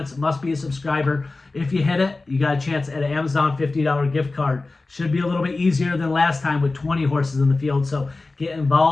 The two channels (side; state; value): right; quieter; 3.4 dB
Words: It must be a subscriber. If you hit it, you got a chance at an Amazon $50 gift card. Should be a little bit easier than last time with 20 horses in the field. So get